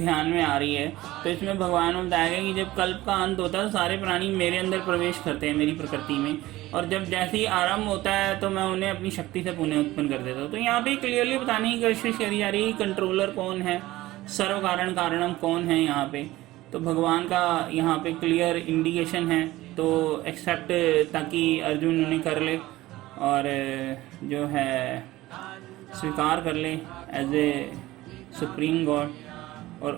में आ रही है। तो इसमें भगवान ने बताया कि जब कल्प का अंत होता है तो सारे प्राणी मेरे अंदर प्रवेश करते हैं, मेरी प्रकृति में, और जब जैसे ही आरंभ होता है तो मैं उन्हें अपनी शक्ति से पुनः उत्पन्न कर देता हूँ। तो यहाँ पे क्लियरली बताने की कोशिश करी जा रही है कंट्रोलर कौन है, सर्व कारण कारणम कौन है यहाँ पे। तो भगवान का यहाँ पे क्लियर इंडिकेशन है। तो एक्सेप्ट ताकि अर्जुन उन्हें कर ले और जो है स्वीकार कर ले एज ए सुप्रीम गॉड, और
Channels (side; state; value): left; quieter; 17.4 dB